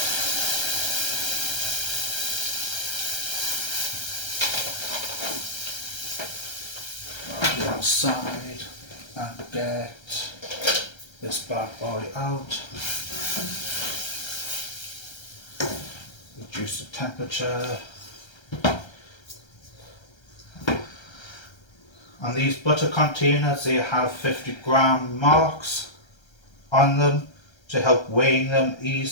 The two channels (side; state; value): right; late; 1.3 ms